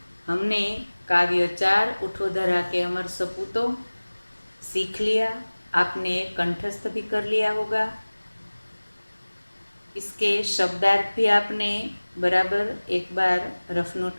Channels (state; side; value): inverted; both; correlation -1.00